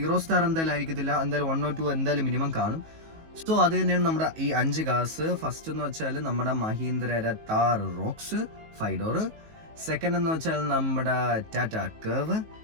സ്റ്റാർ എന്തായാലും ആയിരിക്കത്തില്ല, എന്തായാലും 1 or 2 എന്തായാലും മിനിമം കാണും. സോ അത് തന്നെയാണ് നമ്മുടെ ഈ 5 കാർസ്. ഫസ്റ്റ് എന്ന് വെച്ചാൽ നമ്മുടെ Mahindra Thar rocks 5 door. Second എന്ന് വെച്ചാൽ നമ്മുടെ ടാറ്റ കർവ്.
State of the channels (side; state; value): left; late; 19 ms